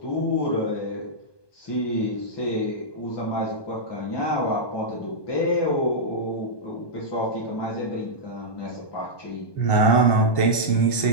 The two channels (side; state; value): right; late; 1.2 ms